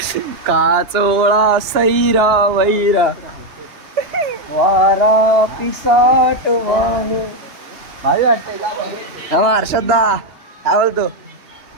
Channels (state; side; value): late; left; 2.9 ms